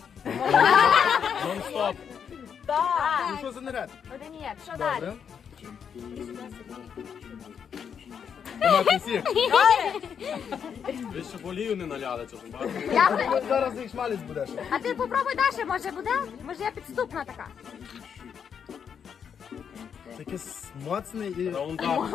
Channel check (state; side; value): quieter; right; 7.4 dB